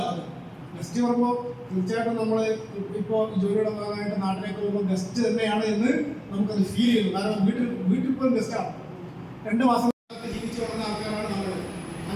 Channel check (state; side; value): identical; both; correlation 1.00